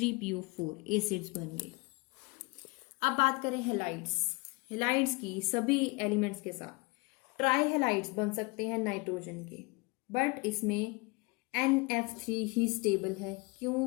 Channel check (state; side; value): quieter; right; 26.5 dB